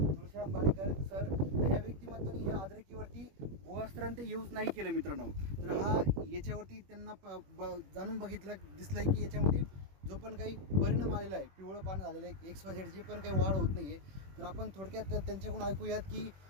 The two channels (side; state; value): left; late; 21 ms